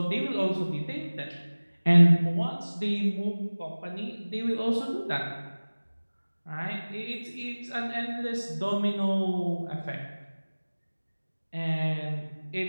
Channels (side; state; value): both; inverted; correlation -1.00